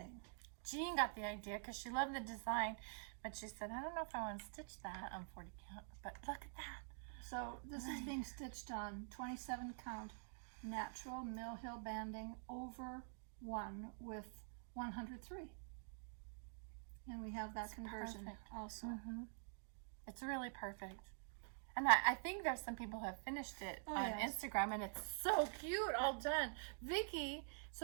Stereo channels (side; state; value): left; silent; digital silence